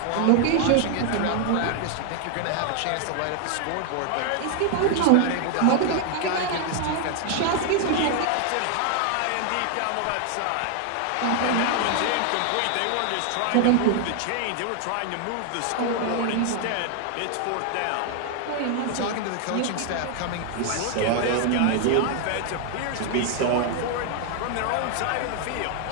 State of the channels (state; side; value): different; both; correlation 0.00